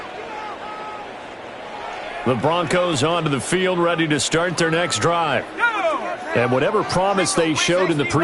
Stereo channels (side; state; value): both; identical; correlation 1.00